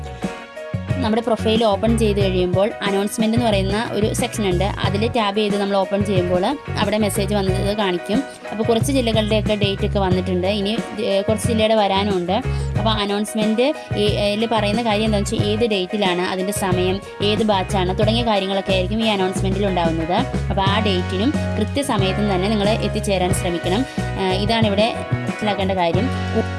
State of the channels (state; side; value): identical; both; correlation 1.00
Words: നമ്മുടെ പ്രൊഫൈൽ ഓപ്പൺ ചെയ്ത് കഴിയുമ്പോൾ അനൗൺസ്മെൻറ്റ് എന്ന് പറയുന്ന ഒരു സെക്ഷൻ ഉണ്ട്. അതിൽ ടാബ് ചെയ്ത് നമ്മൾ ഓപ്പൺ ചെയ്യുമ്പോൾ അവിടെ മെസ്സേജ് വന്നത് കാണിക്കും. അപ്പോൾ കുറച്ച് ജില്ലകളുടെയൊക്കെ ഡേറ്റ് ഒക്കെ വന്നിട്ടുണ്ട്, ഇനി കുറച്ച് ജില്ലയുടെ വരാനുണ്ട്. അപ്പോൾ അനൗൺസ്മെൻറ്റിൽ പറയുന്ന കാര്യം എന്താണെന്ന് വെച്ചാൽ ഏത് ഡേറ്റിലാണ്, അതിൻ്റെ സമയം, ഏത് ബാച്ചാണ് തുടങ്ങിയ കാര്യങ്ങളൊക്കെ ആയിരിക്കും ഈ അനൗൺസ്മെൻറ്റിൽ ഉണ്ടാകുന്നത്. അപ്പോൾ ആ ഡേറ്റിനും കൃത്യസമയത്തും തന്നെ നിങ്ങൾ എത്തിച്ചേരാൻ ശ്രമിക്കണം. ഇതാണ് ഇവിടെ മനസ്സിലാക്കേണ്ട കാര്യം.